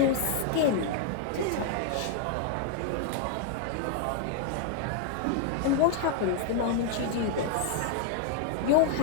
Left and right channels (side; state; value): both; different; correlation 0.00